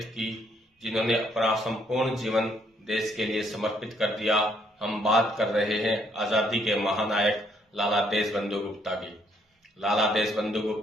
की, जिन्होंने अपना संपूर्ण जीवन देश के लिए समर्पित कर दिया। हम बात कर रहे हैं आजादी के महानायक लाला देशबंधु गुप्ता की। लाला देशबंधु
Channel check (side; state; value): both; normal; correlation 0.69